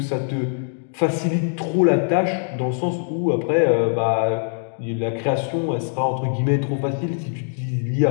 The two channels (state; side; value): silent; right; digital silence